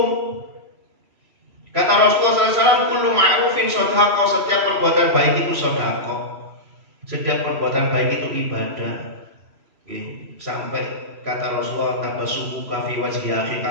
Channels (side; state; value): left; late; 3.0 ms